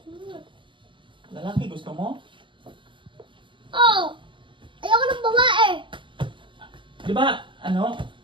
mo. Lalaki gusto mo? Oo! Ayoko ng babae! Di ba, ano?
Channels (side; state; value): left; late; 0.24 ms